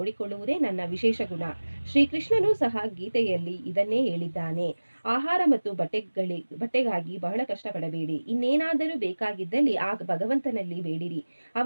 ನನ್ನ ವಿಶೇಷ ಗುಣ. ಶ್ರೀಕೃಷ್ಣನೂ ಸಹ ಗೀತೆಯಲ್ಲಿ ಇದನ್ನೇ ಹೇಳಿದ್ದಾನೆ. ಆಹಾರ ಮತ್ತು ಬಟ್ಟೆಗಾಗಿ ಬಹಳ ಕಷ್ಟಪಡಬೇಡಿ. ಇನ್ನೇನಾದರೂ ಬೇಕಾಗಿದ್ದಲ್ಲಿ ಆ ಭಗವಂತನಲ್ಲಿ ಬೇಡಿರಿ.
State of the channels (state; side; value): inverted; both; correlation -1.00